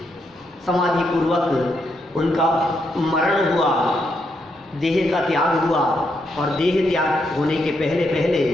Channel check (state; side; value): normal; both; correlation 0.79